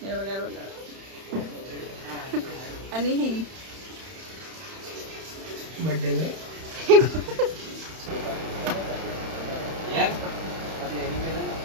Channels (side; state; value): left; late; 31 ms